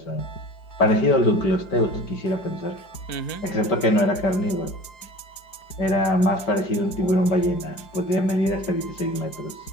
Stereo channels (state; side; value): late; right; 4.8 ms